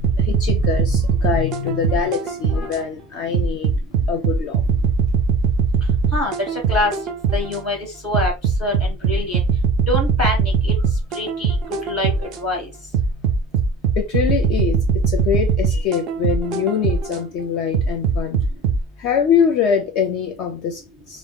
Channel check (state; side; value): normal; both; correlation 0.35